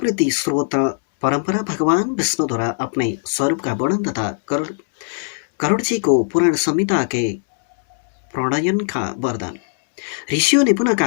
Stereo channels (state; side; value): silent; right; 66 dB below the other